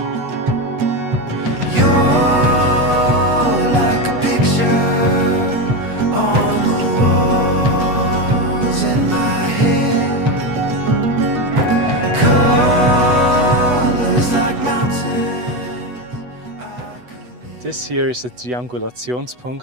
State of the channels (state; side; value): late; left; 8.1 ms